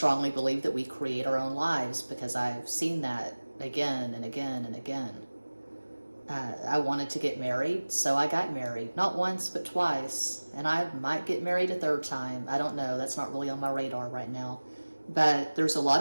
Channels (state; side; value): inverted; both; correlation -1.00